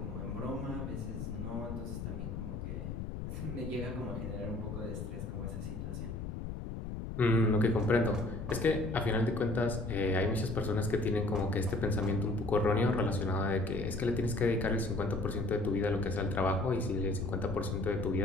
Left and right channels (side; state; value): left; noise; rumble, 6 dB below the sound